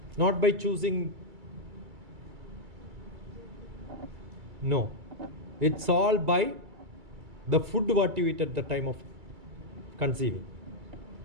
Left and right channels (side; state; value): left; late; 2.3 ms